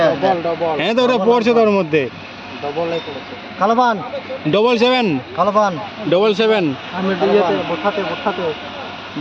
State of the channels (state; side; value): identical; both; correlation 1.00